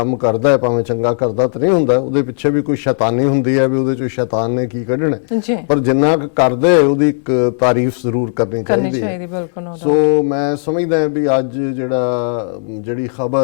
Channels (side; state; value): right; silent; 70 dB below the other